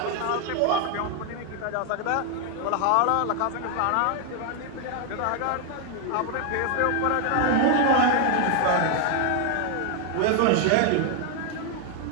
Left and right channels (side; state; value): both; different; correlation 0.00